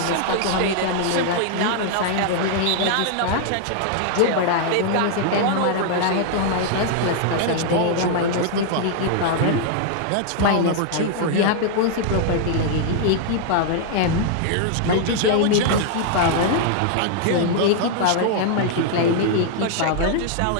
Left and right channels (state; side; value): different; both; correlation 0.00